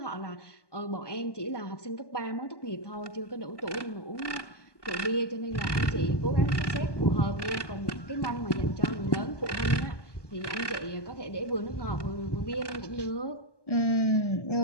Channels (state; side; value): late; right; 1.2 ms